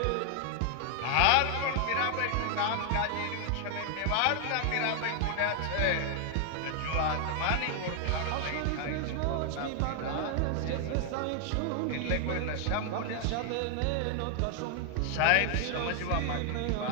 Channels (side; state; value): both; different; correlation 0.00